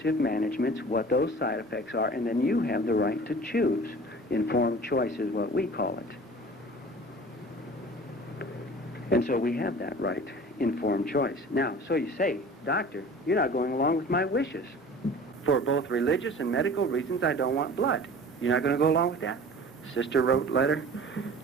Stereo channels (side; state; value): both; normal; correlation 0.42